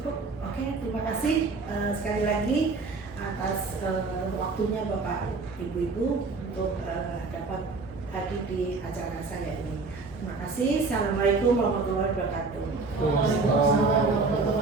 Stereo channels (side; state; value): left; quieter; 4.0 dB